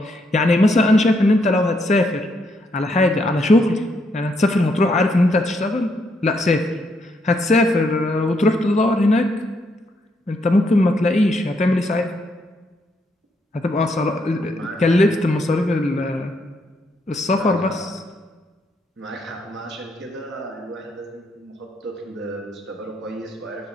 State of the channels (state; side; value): normal; both; correlation 0.76